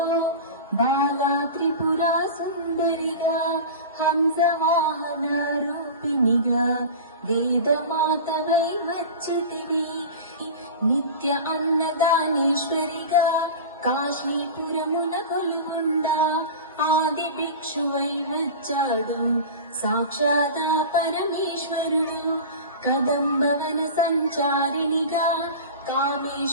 బాలా త్రిపురా సుందరిగా హంసవాహన రూపిణిగా వేదమాతవై వచ్చితివి నిత్య అన్నదానేశ్వరిగా కాశీపురమున కొలువుండా ఆది భిక్షువై వచ్చాడు సాక్షాత్ పరమేశ్వరుడు కదంబవన సంచారినిగా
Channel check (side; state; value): both; inverted; correlation -0.32